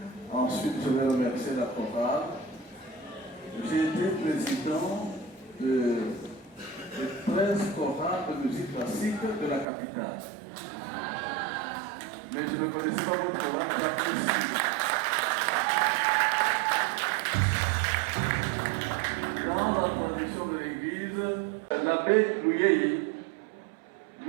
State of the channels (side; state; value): left; drops out; at 9.7 s